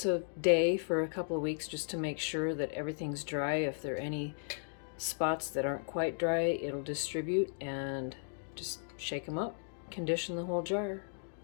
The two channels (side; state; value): right; silent; digital silence